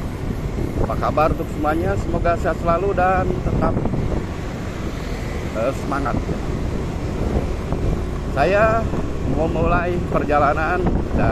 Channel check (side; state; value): both; identical; correlation 1.00